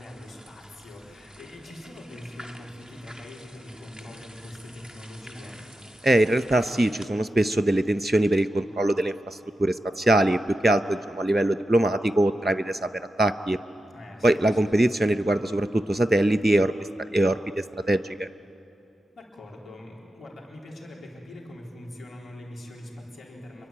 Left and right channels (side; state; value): both; normal; correlation 0.90